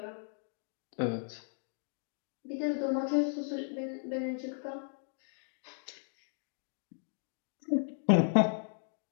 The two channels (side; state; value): right; silent; digital silence